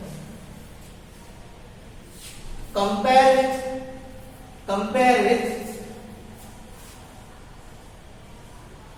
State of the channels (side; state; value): both; identical; correlation 1.00